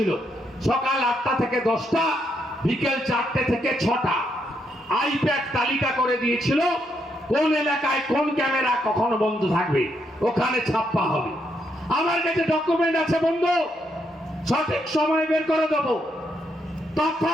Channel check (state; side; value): normal; both; correlation 0.77